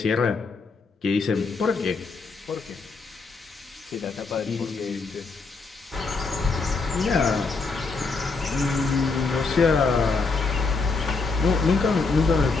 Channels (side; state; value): right; quieter; 4.3 dB